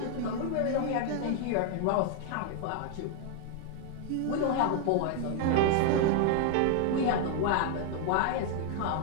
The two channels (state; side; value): different; both; correlation 0.00